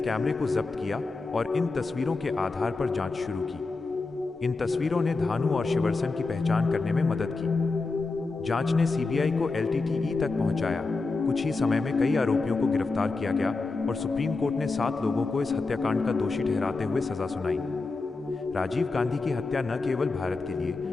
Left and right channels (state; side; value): quieter; right; 3.8 dB